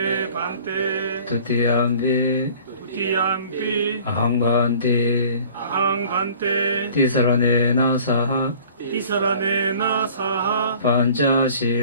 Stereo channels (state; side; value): inverted; both; correlation -0.48